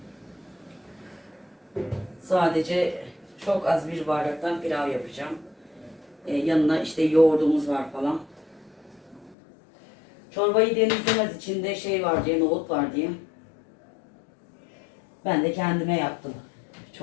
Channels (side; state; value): right; drops out; at 9.3 s